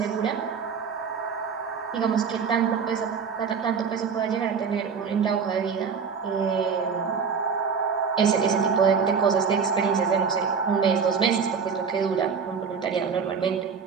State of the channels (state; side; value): quieter; left; 6.0 dB